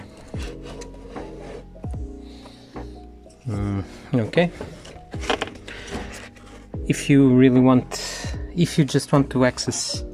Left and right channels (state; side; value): identical; both; correlation 1.00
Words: Okay. if you just want to access